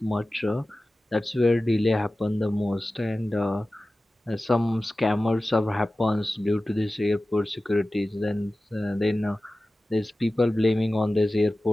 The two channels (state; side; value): normal; both; correlation 0.96